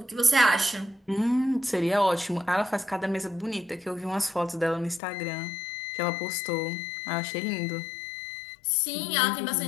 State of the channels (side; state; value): right; drops out; at 5.0 s